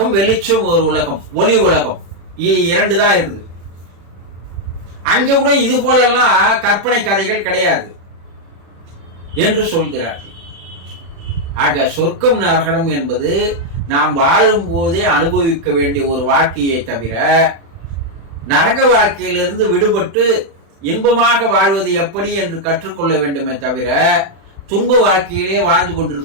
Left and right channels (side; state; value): left; late; 36 ms